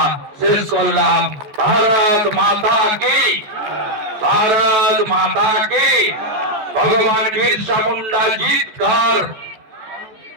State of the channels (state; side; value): late; left; 14 ms